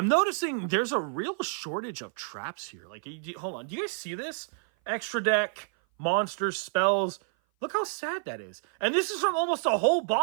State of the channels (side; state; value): left; silent; 56 dB below the other